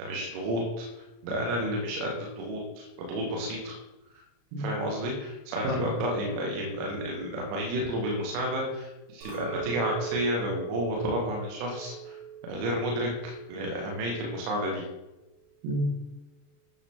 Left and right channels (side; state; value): left; late; 34 ms